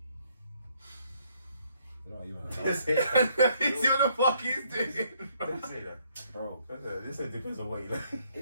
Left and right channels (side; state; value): both; inverted; correlation -0.68